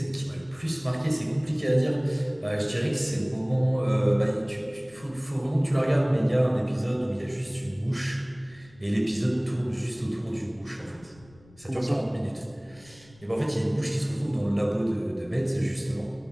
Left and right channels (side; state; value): left; noise; rumble, 26 dB below the sound